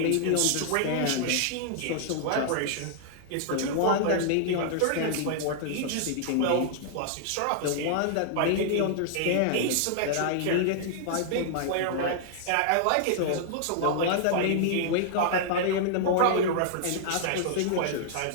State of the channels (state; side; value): different; both; correlation -0.01